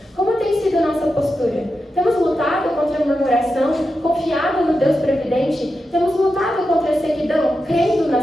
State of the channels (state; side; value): normal; both; correlation 0.89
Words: Como tem sido nossa postura? Temos lutado contra a murmuração, confiado no Deus previdente? Temos lutado contra a sequidão, crendo